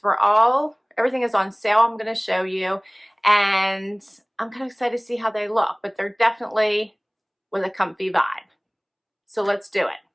Everything is on sale. I'm going to show you, and I'm kind of excited to see how they look, but they're definitely with a comfy vibe. So let's do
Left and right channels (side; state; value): both; identical; correlation 1.00